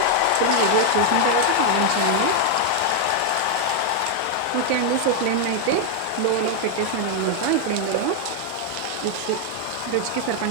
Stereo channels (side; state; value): both; different; correlation 0.00